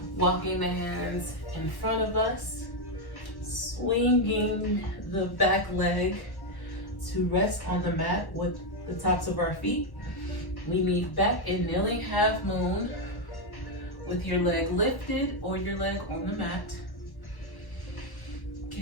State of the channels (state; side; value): late; right; 1.1 ms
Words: Walking the hands in front of us. Swinging the back leg to rest on the mat with the tops of our feet. We meet back in kneeling half moon with your leg lifted or your leg on the mat.